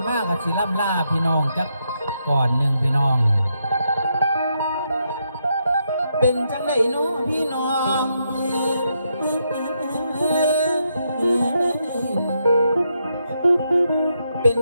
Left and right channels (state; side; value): inverted; both; correlation -0.80